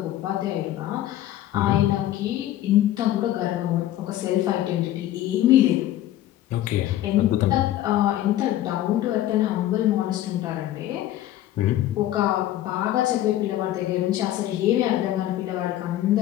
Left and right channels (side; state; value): right; quieter; 13.4 dB